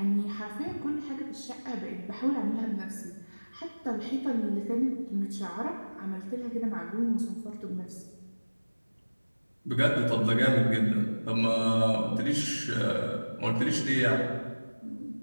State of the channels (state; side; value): inverted; both; correlation -1.00